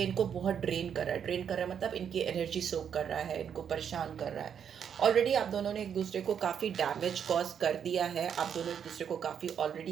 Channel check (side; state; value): left; quieter; 8.0 dB